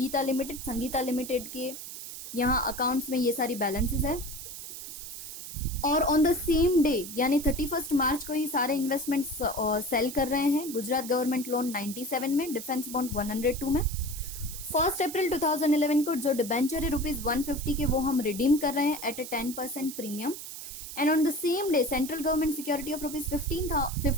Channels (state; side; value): noise; right; hiss, 10 dB below the sound